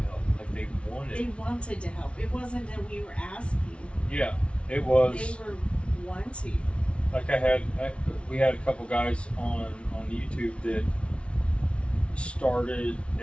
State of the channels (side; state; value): right; late; 0.060 ms